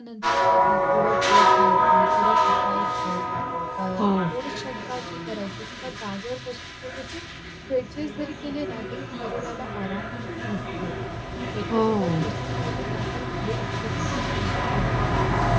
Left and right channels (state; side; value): identical; both; correlation 1.00